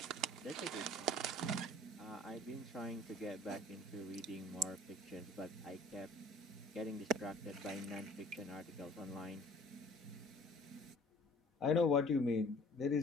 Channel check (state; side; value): normal; both; correlation 0.50